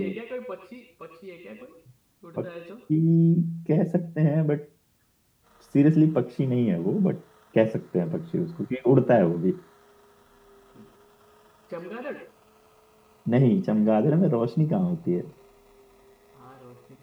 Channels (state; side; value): identical; both; correlation 1.00